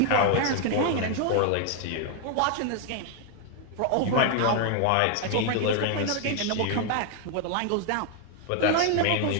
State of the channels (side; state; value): both; different; correlation 0.00